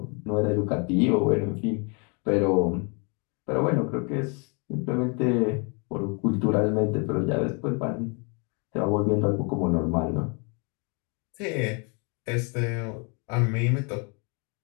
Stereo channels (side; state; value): right; quieter; 34.5 dB